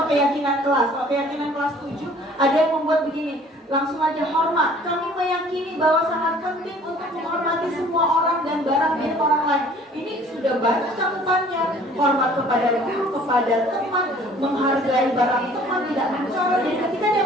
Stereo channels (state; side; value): normal; both; correlation 0.53